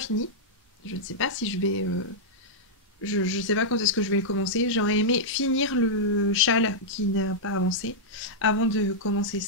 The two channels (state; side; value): normal; both; correlation -0.07